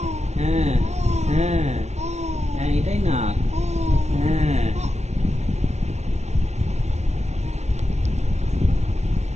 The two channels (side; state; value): left; late; 0.32 ms